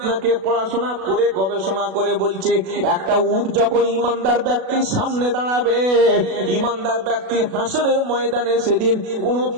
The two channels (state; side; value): late; left; 37 ms